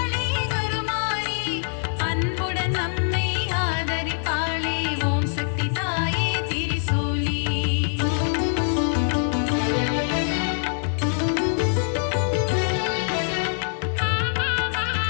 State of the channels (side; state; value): right; silent; digital silence